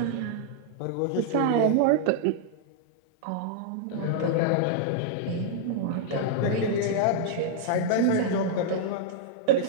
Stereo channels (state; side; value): different; both; correlation -0.01